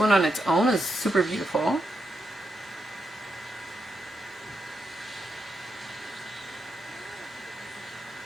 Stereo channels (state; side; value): normal; both; correlation 0.83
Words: on its own is super beautiful.